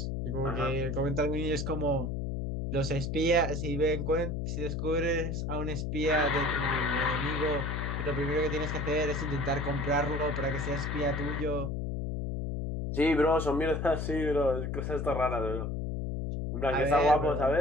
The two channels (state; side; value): noise; left; hum, 2 dB below the sound